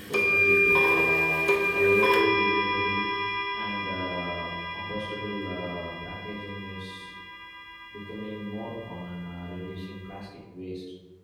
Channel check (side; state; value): both; identical; correlation 1.00